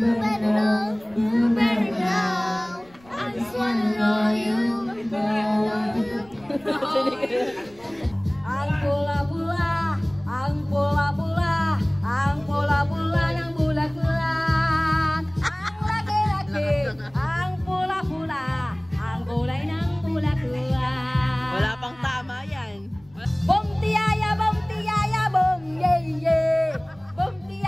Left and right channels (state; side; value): noise; left; rumble, 27 dB below the sound